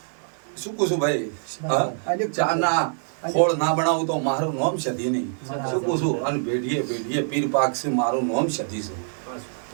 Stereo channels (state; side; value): silent; left; digital silence